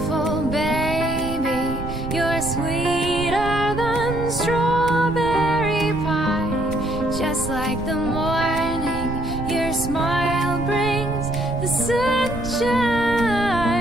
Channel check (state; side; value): noise; right; rumble, 8 dB below the sound